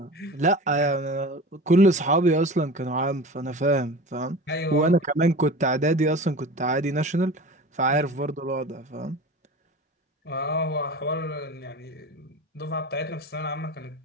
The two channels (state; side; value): normal; both; correlation 0.35